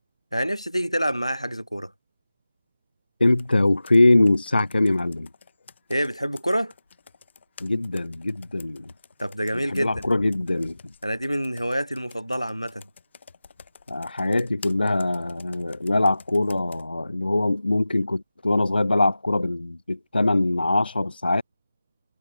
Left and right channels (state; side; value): inverted; both; correlation -0.96